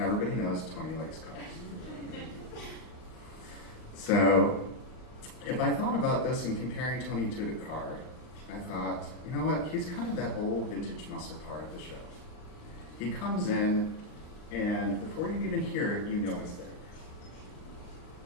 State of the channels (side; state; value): right; late; 39 ms